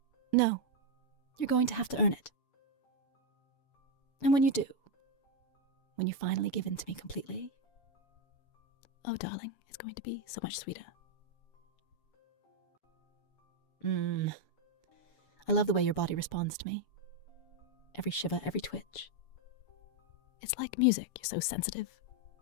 No, you're going to have to earn it. And when you do, when you finally give in to me completely, oh, darling, it's going to be so much sweeter. I love the way your body responds to me. Every shiver, every twitch. It's like music. You're so sensitive,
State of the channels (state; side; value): late; right; 7.0 ms